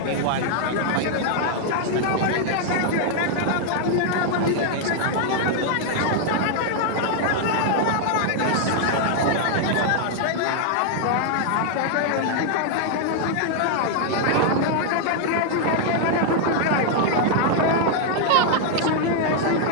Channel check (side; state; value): both; different; correlation 0.00